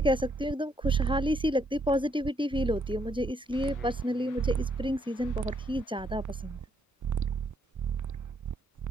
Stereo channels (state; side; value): normal; both; correlation 0.73